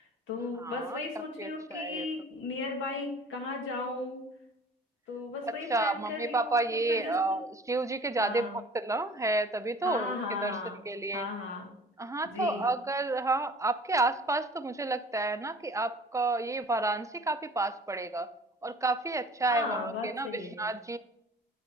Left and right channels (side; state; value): both; normal; correlation 0.47